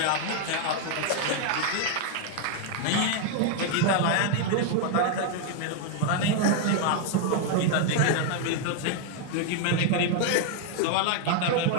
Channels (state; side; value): different; both; correlation 0.00